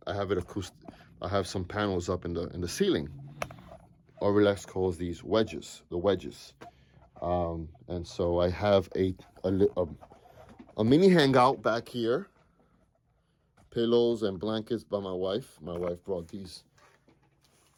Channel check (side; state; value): both; identical; correlation 1.00